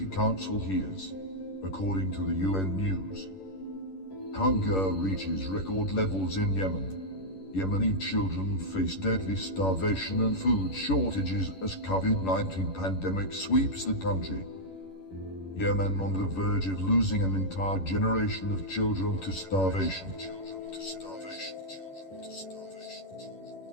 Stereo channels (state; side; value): late; right; 11 ms